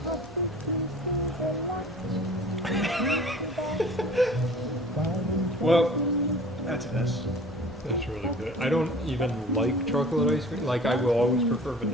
Well, that's an S. That's really good. I don't even like chocolate ice cream. Like, I will always prefer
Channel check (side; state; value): both; normal; correlation 0.45